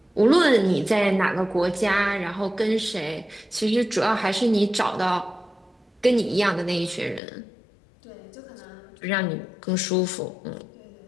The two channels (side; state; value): right; drops out; at 7.2 s